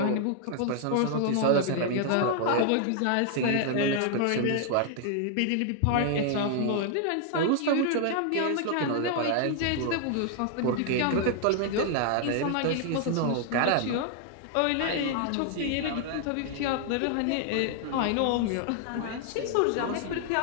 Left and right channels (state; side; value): different; both; correlation 0.00